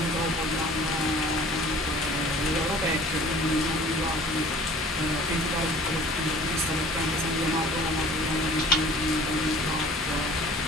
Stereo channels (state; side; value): normal; both; correlation 0.48